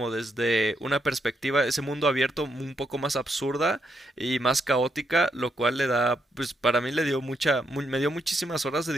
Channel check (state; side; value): normal; both; correlation 0.78